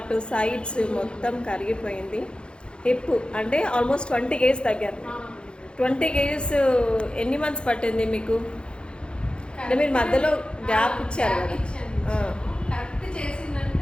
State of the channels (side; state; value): right; late; 0.054 ms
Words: సైడ్స్ మొత్తం కరిగిపోయింది. హిప్ అంటే ఆల్మోస్ట్ 20 కేజీస్ తగ్గారు. 20 కేజీస్ ఎన్ని మంత్స్ పట్టింది మీకు? అంటే మీరు మధ్యలో గ్యాప్ ఇచ్చారు కదా?